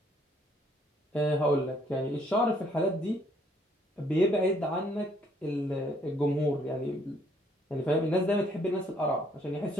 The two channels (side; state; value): both; normal; correlation 0.66